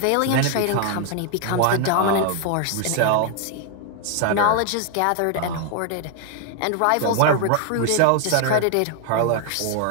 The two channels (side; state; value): both; different; correlation 0.00